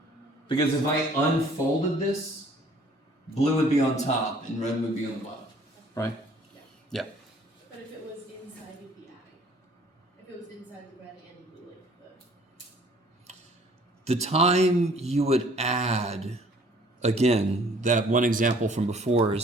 Because if I unfolded this, blue would be on top and red would be on the bottom. Right? Yeah. But if it was inside, you'd be adding. If it was inside the red and the blue, like The time you would add, again, that one example from before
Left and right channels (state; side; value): normal; both; correlation 0.56